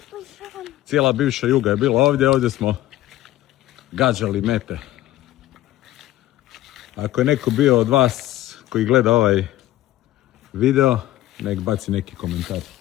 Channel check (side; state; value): right; quieter; 15.0 dB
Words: Cijela bivša Juga je bila ovdje, ovdje smo gađali mete. Ako je neko bio od vas koji gleda ovaj video, nek baci neki komentar.